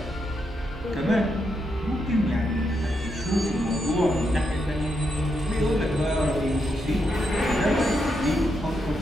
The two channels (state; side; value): normal; both; correlation 0.82